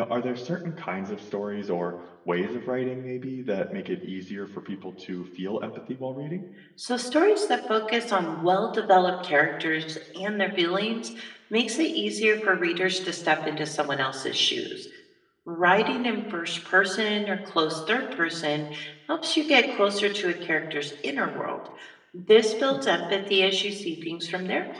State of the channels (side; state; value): both; identical; correlation 1.00